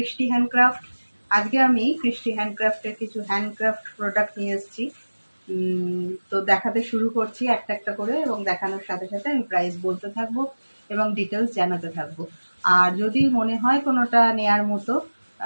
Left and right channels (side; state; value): both; inverted; correlation -1.00